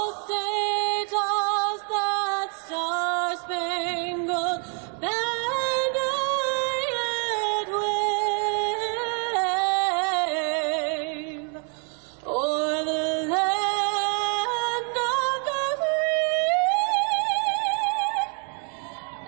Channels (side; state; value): left; quieter; 37.7 dB